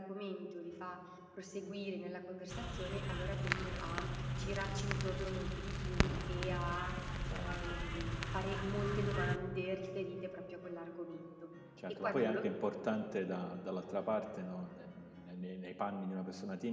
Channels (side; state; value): both; identical; correlation 1.00